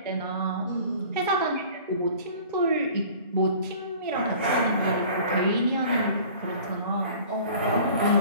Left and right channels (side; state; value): both; inverted; correlation -0.46